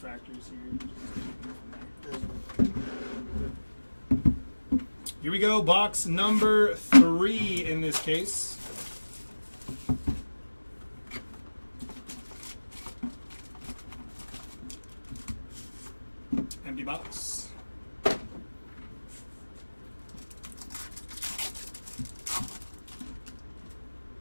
here. Here we go. Box number 3 in this case. Empty box.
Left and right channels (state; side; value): inverted; both; correlation -1.00